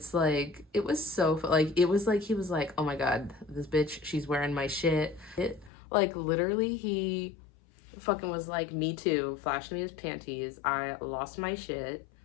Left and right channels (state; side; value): drops out; right; at 5.7 s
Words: like, it was so like, it was like he was like, oh my God, this bitch, she's wearing my shit. Like literally he fucking was like, me too, flashed me his panties. I lost my shit,